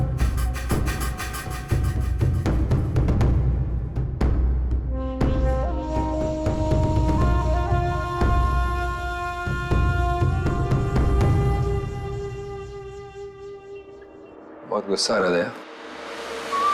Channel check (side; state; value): both; identical; correlation 1.00